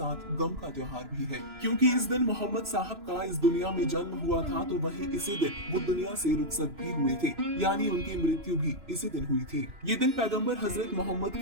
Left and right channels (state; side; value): late; left; 2.9 ms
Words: गम का त्योहार भी है, क्योंकि इस दिन मोहम्मद साहब का इस दुनिया में जन्म हुआ था, तो वही इसी दिन वो दुनिया से रुखसत भी हुए थे, यानी उनकी मृत्यु भी इसी दिन हुई थी। ये दिन पैगंबर हजरत मोहम्मद